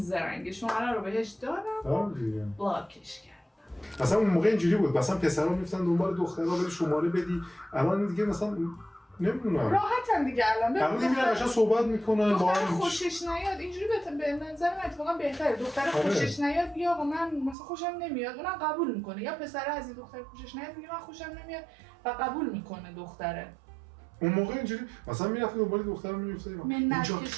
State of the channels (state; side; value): drops out; left; at 17.6 s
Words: شماره رو بهش دادم بلاکش کردم. اصلا اون موقع اینجوری بود مثلا پسرا میفتن دنبال دخترها بری شماره بدی. الان دیگه مثلا نمیدونم راحتن دیگه الان الان دیگه قشنگ صحبت میکنن با دختر هم خوشش نیاد اینجوری به نظر من اتفاقا بهتره. دختر خوشش نیاد بیا آقا من مثلا خوشم نمیاد اونم قبول میکنه، یا پسر از این دختر خوشش نیاد میگه من خوشم نمیاد و قبول میکنه دختره. اون موقع اینجوری مثلا میرفتیم دنبال دخترم میگفتیم منت اینجا